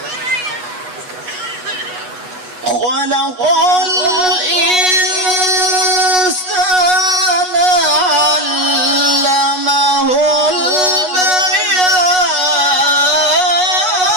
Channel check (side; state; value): left; late; 8.2 ms